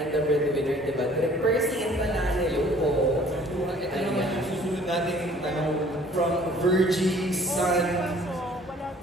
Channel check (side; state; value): both; normal; correlation 0.54